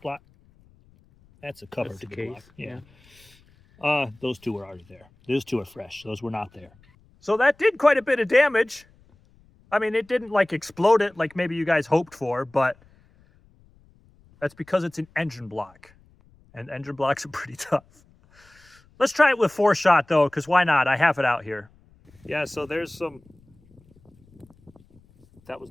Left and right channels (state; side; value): noise; left; rumble, 30 dB below the sound